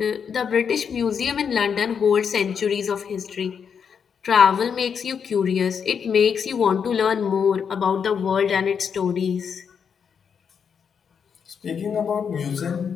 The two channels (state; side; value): quieter; right; 6.9 dB